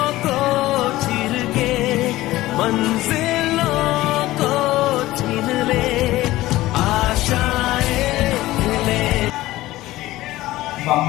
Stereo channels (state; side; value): quieter; right; 17.0 dB